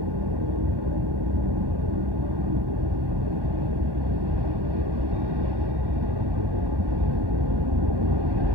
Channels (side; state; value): left; late; 1.1 ms